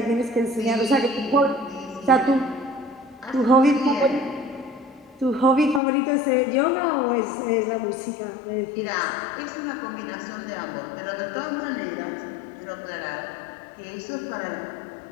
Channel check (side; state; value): right; drops out; at 5.8 s